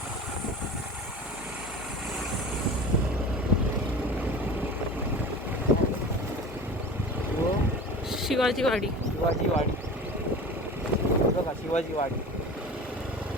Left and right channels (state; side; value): normal; both; correlation 0.36